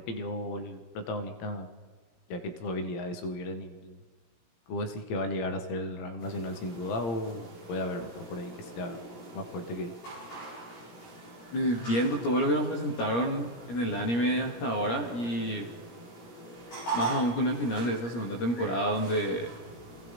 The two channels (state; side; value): late; right; 17 ms